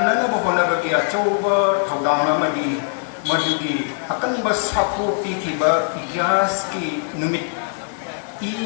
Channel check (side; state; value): right; silent; digital silence